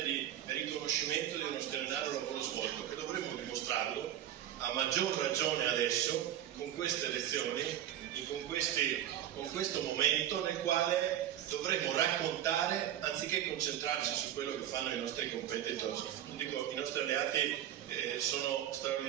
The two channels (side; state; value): left; quieter; 11.5 dB